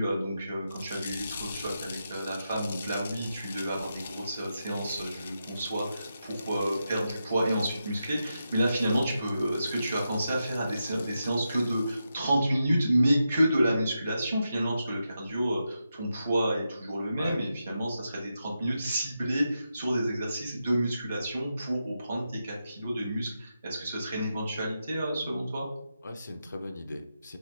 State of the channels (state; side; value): inverted; both; correlation -0.87